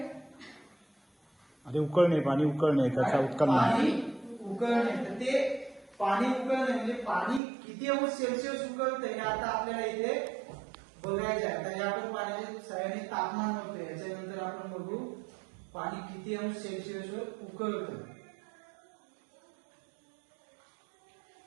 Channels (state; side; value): drops out; left; at 7.4 s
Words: अरे उकळणे, पाणी उकळणे, त्याचा उत्कलन. पाणी उकळणे. तर ते पाणी उकळणे म्हणजे पाणी किती अंश सेल्सिअस उकळतंय हे आता आपल्याला इथे बघायचं आहे. तर आपण पाण्याच्या सहाय्याने तापमान मोजतोय. याच्यानंतर आपण बघू पाणी किती अंश सेल्सिअसवर उकळतं.